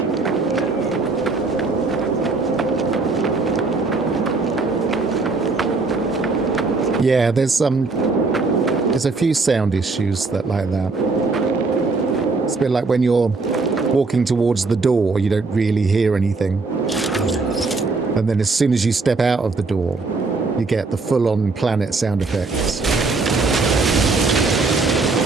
Yeah, there's a few sound issues that like that. It's a bit like when you're walking towards the door, you don't really hear anything. And then as soon as you step out of the door, you get the full-on planet sound effects.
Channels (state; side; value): quieter; left; 3.8 dB